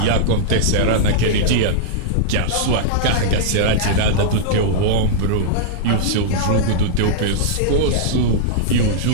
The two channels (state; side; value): different; both; correlation -0.02